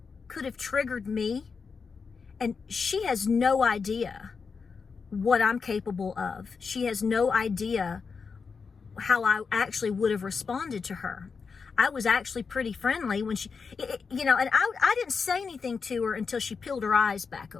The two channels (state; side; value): quieter; right; 5.3 dB